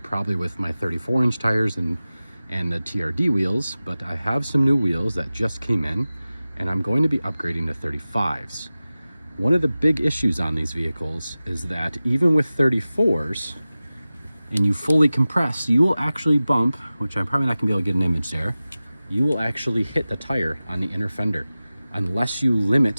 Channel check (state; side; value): inverted; both; correlation -0.96